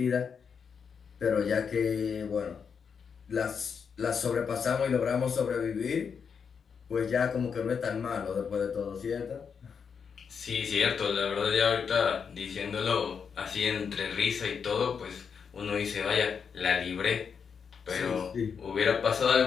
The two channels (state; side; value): quieter; right; 6.4 dB